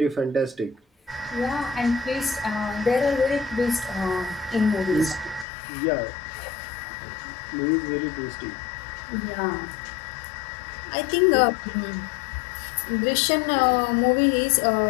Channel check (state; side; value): drops out; right; at 5.5 s